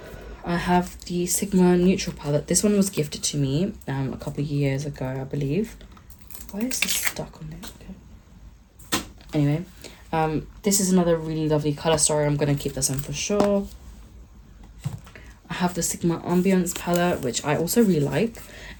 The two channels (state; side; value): identical; both; correlation 1.00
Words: I have the Sigma Neutral palette. This one was gifted to me a couple of years ago, I believe. Why is this stuck on it? Okay. Anyway, this is another really lovely colour story. I'm going to keep this one for sure. I have the Sigma Ambience palette, which I also really like.